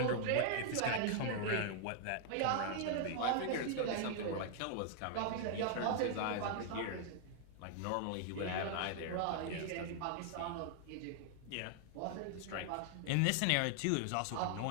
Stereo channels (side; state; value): both; different; correlation 0.00